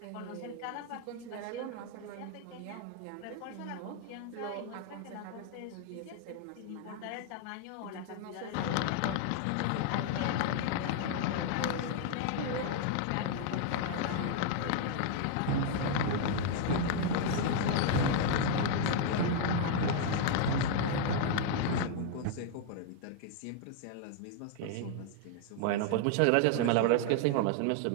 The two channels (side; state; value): both; different; correlation 0.00